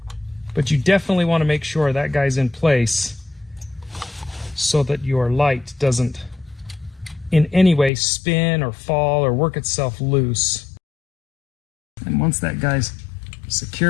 but you definitely want to make sure that guy's in place so that your light doesn't in any way spin or fall or work itself loose. And once that guy's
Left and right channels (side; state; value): right; drops out; at 7.9 s